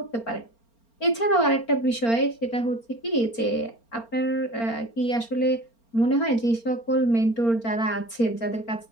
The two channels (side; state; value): right; late; 4.4 ms